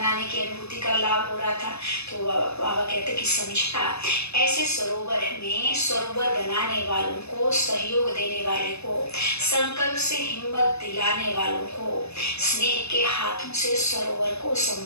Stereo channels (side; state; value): right; late; 0.79 ms